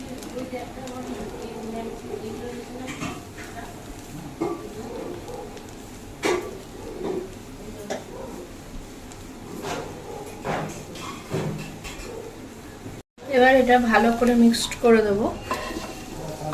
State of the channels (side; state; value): both; identical; correlation 1.00